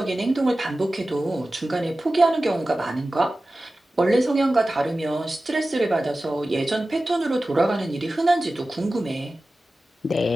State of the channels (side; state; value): both; normal; correlation 0.95